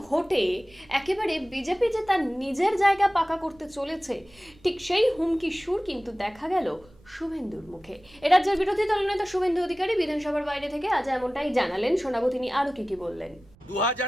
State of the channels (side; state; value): right; noise; rumble, 27 dB below the sound